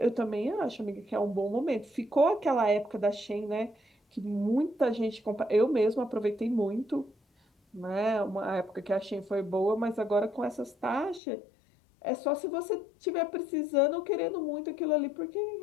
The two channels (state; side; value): drops out; right; at 11.2 s